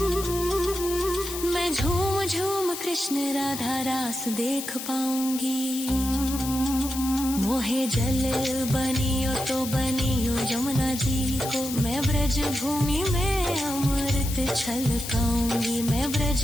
मैं झूम झूम कृष्ण राधा रास देख पाऊंगी। मोहे जल बनियो तो बनियो यमुना जी को, मैं ब्रज भूमि में अमृत छलकाऊंगी, मैं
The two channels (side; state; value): left; noise; hiss, 8 dB below the sound